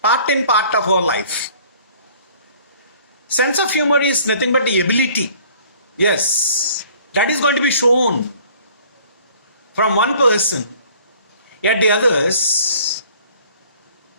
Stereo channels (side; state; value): both; inverted; correlation -0.54